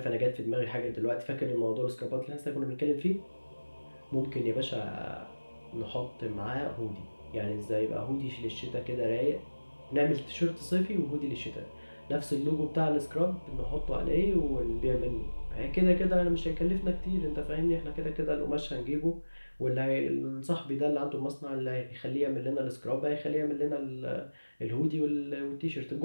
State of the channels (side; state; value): both; inverted; correlation -1.00